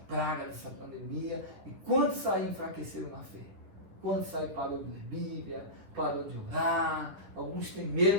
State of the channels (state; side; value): late; left; 10 ms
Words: dessa pandemia, e quando sair enfraqueceram na fé, quando sair parou de ler Bíblia, parou de orar, alguns têm medo